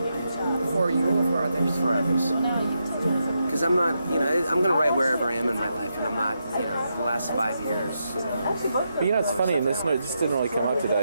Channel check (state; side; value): inverted; both; correlation -0.84